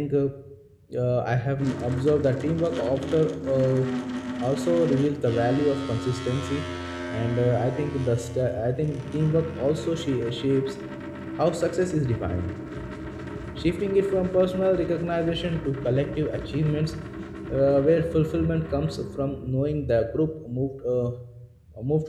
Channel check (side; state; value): both; identical; correlation 1.00